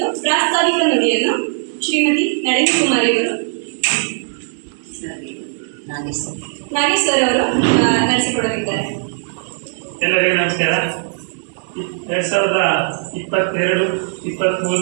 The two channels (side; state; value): left; silent; 63 dB below the other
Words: ಪ್ರಾಸ್ತಾವಿಕ ನುಡಿಯನ್ನು ಶ್ರೀಮತಿ ನಳಿನಿ ಕುಮಾರಿ ಅವರು ನಾಗೇಶ್ ಸರ್ ಅವರು ನಡೆಸಿಕೊಡಲಿದ್ದಾರೆ. ಎಲ್ಲರಿಗೂ ನಮಸ್ಕಾರ.